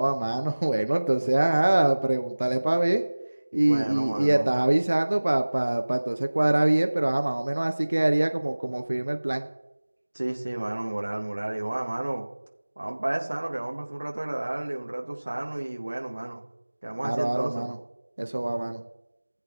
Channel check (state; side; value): inverted; both; correlation -1.00